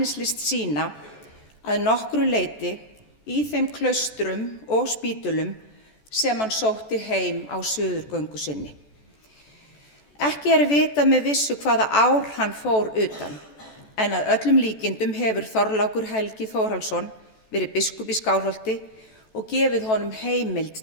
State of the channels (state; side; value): late; right; 14 ms